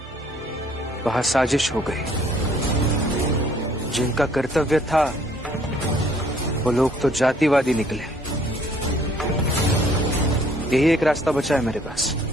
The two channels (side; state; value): both; normal; correlation 0.61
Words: वहां साजिश हो गई। जिनका कर्तव्य था वो लोग तो जातिवादी निकले। यही एक रास्ता बचा है मेरे पास।